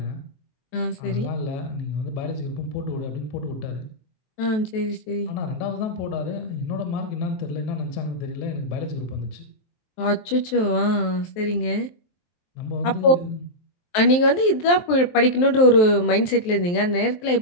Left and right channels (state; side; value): late; right; 23 ms